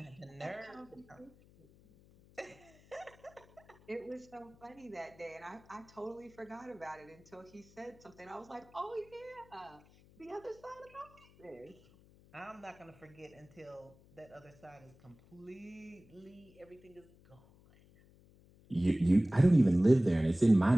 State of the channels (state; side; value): noise; left; hum, 26 dB below the sound